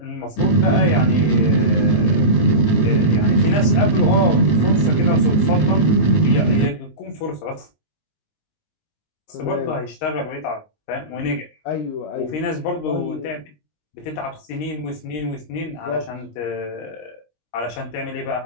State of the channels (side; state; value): right; late; 19 ms